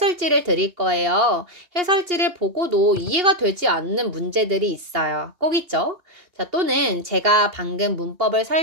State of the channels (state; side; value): late; left; 2.8 ms